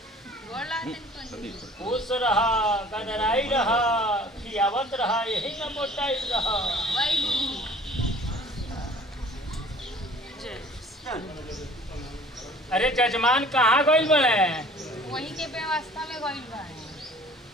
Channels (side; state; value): both; normal; correlation 0.49